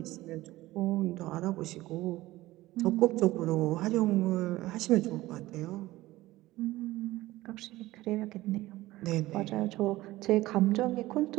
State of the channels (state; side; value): quieter; left; 17.6 dB